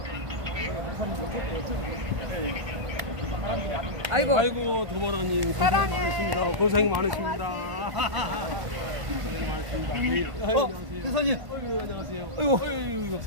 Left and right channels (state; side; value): late; left; 1.5 ms